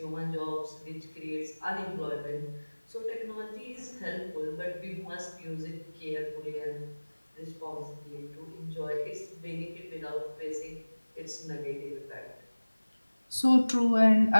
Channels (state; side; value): inverted; both; correlation -1.00